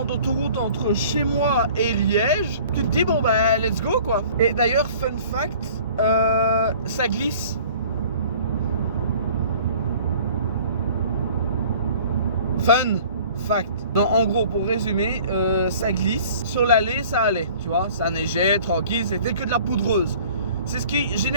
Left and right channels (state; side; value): inverted; both; correlation -0.50